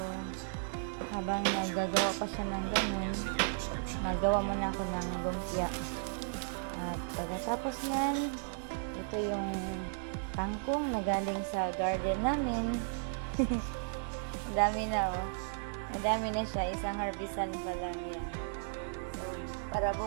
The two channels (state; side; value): silent; left; digital silence